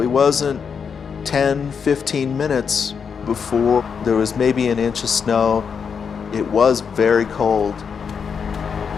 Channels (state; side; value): quieter; right; 6.4 dB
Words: wasn't 10, 15 minutes before there was maybe an inch of snow. It was very cold.